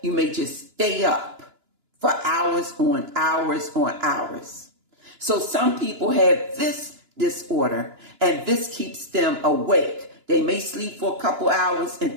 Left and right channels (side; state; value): left; late; 2.9 ms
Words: You may just stay up for hours on hours on hours. So some people have this disorder, and this keeps them awake. They may sleep for a couple hours